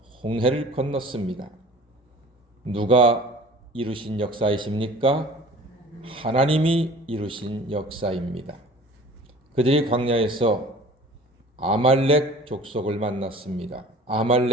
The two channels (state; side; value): normal; both; correlation 0.45